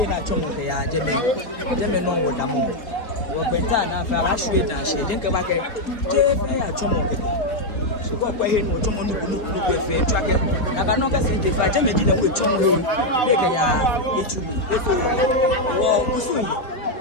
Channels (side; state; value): right; late; 4.4 ms